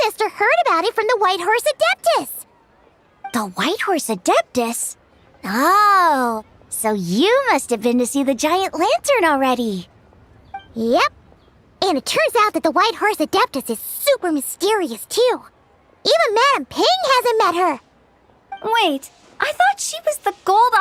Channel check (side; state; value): both; identical; correlation 1.00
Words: heard about it from the White Horse Adeptus. The White Horse Adeptus? Oh, so you must have been to see the giant lantern already. Yep. And it turns out that the White Horse Adeptus is super mysterious, too. Even Madame Ping hasn't met her. Wait, I thought she was the